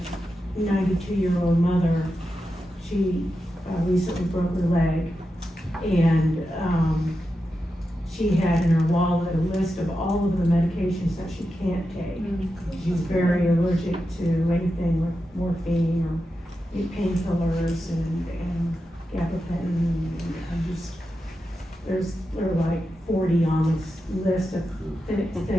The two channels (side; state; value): both; normal; correlation 0.89